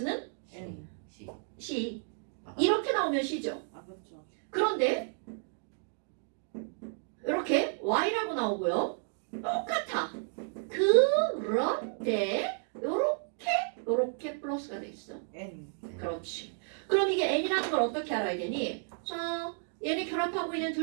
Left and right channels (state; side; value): silent; left; 56 dB below the other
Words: N C c. 이렇게 나오면 c죠. 그렇죠. 그런데 이렇게 y라고 나오고요. 똑같아. 그런데 요렇게 플러스가 돼 있어. N 그렇지. 그럼 이게 n이라는 걸 어떻게 알아야 되니? 자, 얘네 결합하고 있는